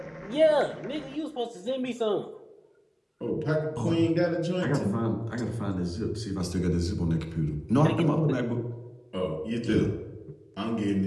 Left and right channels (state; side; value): identical; both; correlation 1.00